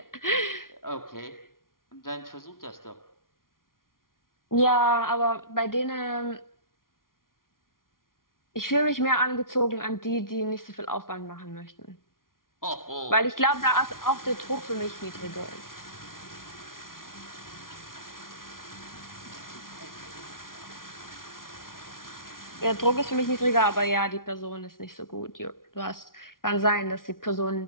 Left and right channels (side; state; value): right; late; 0.91 ms